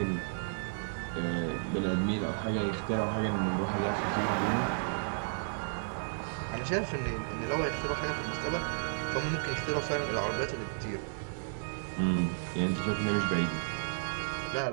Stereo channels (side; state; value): left; silent; digital silence